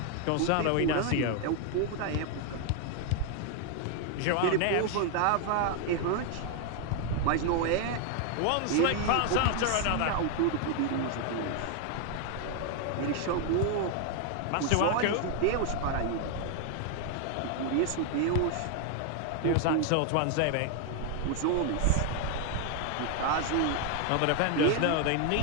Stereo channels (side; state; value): both; different; correlation 0.00